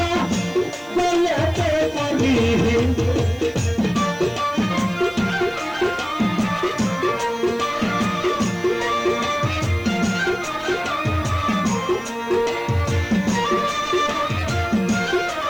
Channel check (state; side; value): noise; right; hiss, 26 dB below the sound